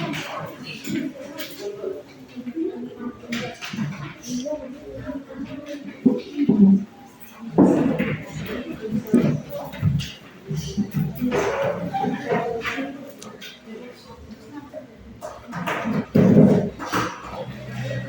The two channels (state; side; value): identical; both; correlation 1.00